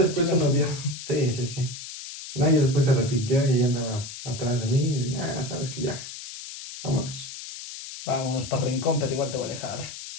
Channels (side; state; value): left; noise; hiss, 11 dB below the sound